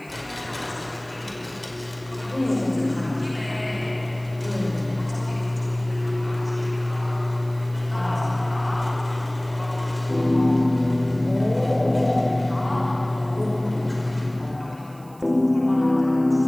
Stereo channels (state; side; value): noise; right; hiss, 27 dB below the sound